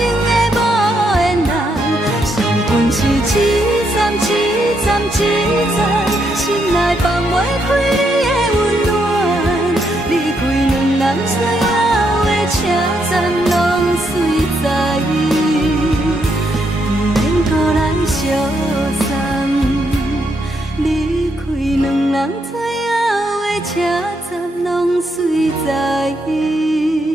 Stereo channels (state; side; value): normal; both; correlation 0.77